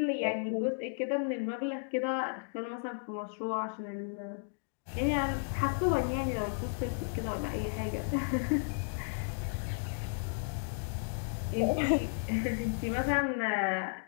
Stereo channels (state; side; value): silent; right; digital silence